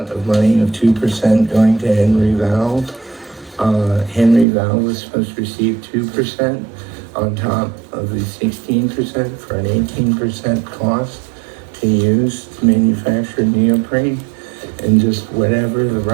of money of 2% going to Henry Valve. Henry Valve was supposed to receive 2% on top of the 16% for an 18% cost to use to manufacture neoprene. And just whatever the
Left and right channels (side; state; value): left; drops out; at 4.5 s